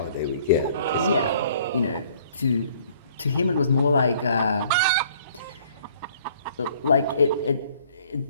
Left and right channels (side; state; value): both; inverted; correlation -0.58